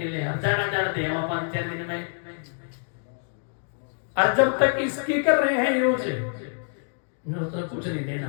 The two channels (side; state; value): right; silent; digital silence